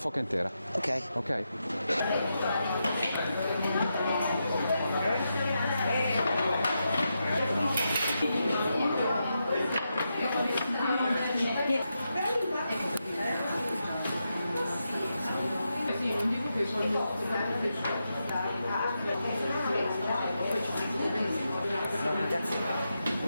intera. Ok. Ok?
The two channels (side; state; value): both; inverted; correlation -0.86